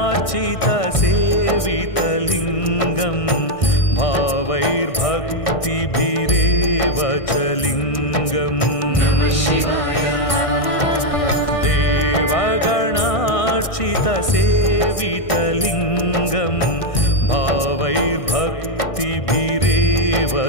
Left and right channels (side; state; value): right; late; 1.6 ms